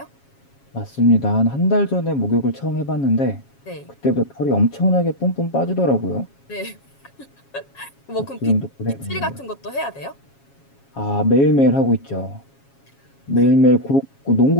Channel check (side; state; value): right; late; 7.3 ms